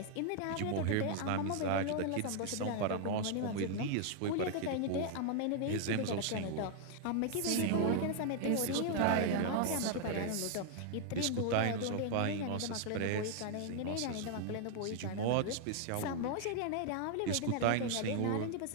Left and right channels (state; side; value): different; both; correlation 0.00